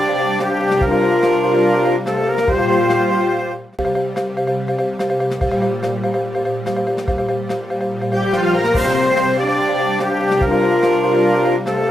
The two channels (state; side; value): normal; both; correlation 0.87